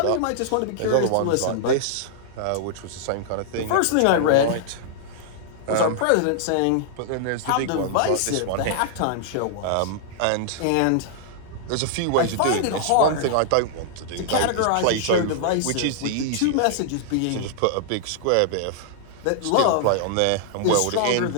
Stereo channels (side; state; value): both; different; correlation -0.01